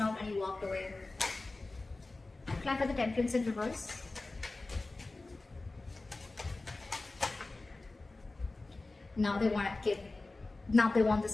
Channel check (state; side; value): quieter; right; 3.2 dB